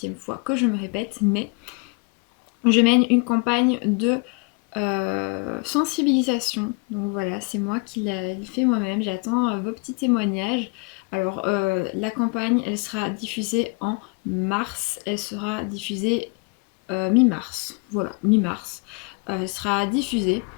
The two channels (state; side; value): quieter; right; 32.0 dB